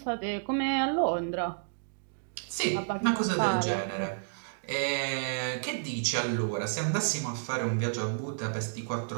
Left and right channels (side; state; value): left; silent; digital silence